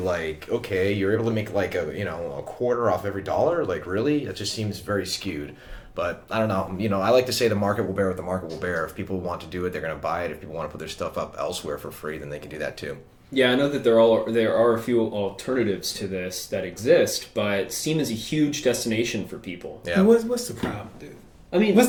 okay, you're able to make like a quarter off every dollar? Like, really? It just seems very skewed. But I don't know. I like to say the market will bear what the market will bear. If people want to do it, they're going to buy it. If people want to put their stuff up elsewhere for free, then they can do that too. yeah, I know that there are a few alternatives to this that exist, but Steam is a huge destination for people. Yeah. And what's the problem, dude? I mean,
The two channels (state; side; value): identical; both; correlation 1.00